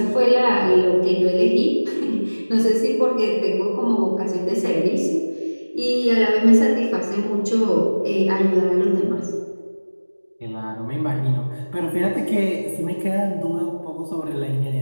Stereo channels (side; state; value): both; inverted; correlation -1.00